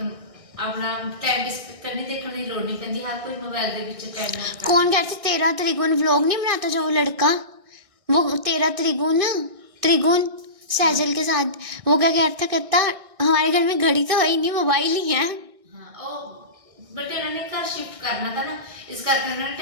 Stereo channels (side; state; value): left; late; 1.6 ms